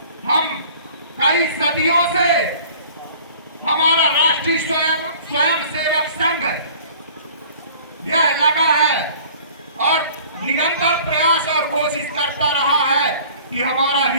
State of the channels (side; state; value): both; inverted; correlation -0.48